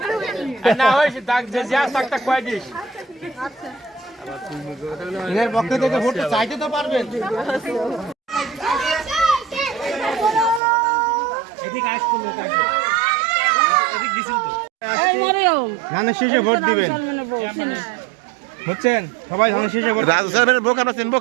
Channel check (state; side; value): drops out; left; at 10.6 s